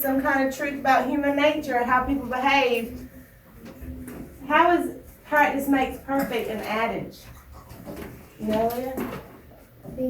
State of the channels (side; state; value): both; identical; correlation 1.00